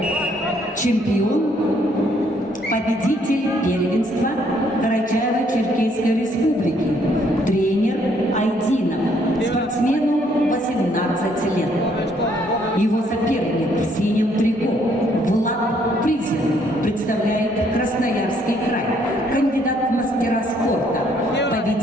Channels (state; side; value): normal; both; correlation 0.67